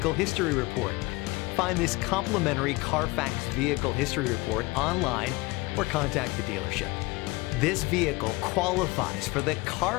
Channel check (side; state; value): right; quieter; 23.5 dB